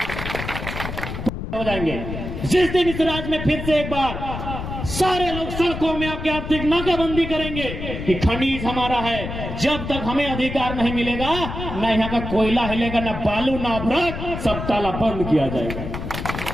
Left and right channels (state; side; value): noise; left; rumble, 7 dB below the sound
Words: हो जाएंगे। जिस दिन इस राज्य में फिर से एक बार सारे लोग सड़कों में आके आर्थिक नाकाबंदी करेंगे कि खनिज हमारा है, जब तक हमें अधिकार नहीं मिलेगा न यहाँ का कोयला हिलेगा, न बालू, न अभ्रक, सब ताला बंद किया जाएगा।